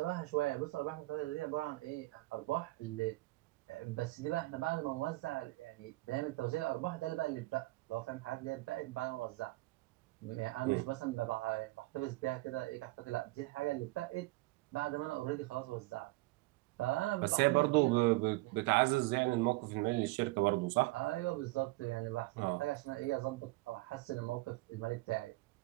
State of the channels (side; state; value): left; quieter; 21.3 dB